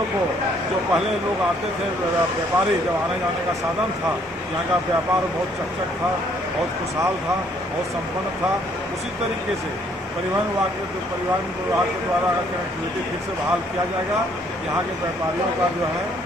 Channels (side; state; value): both; normal; correlation 0.65